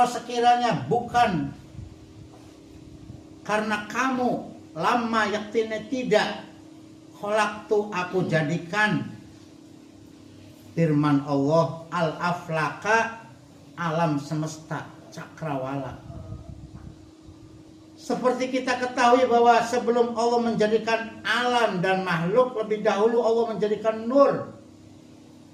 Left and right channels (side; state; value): both; identical; correlation 1.00